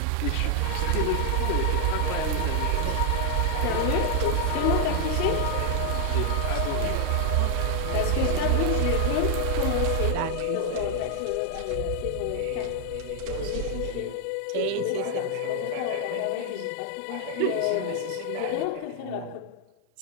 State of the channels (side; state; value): both; different; correlation 0.00